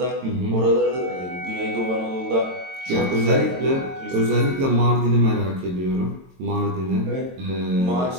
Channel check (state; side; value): late; left; 22 ms